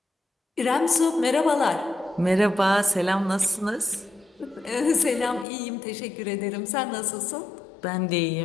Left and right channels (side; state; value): right; drops out; at 5.5 s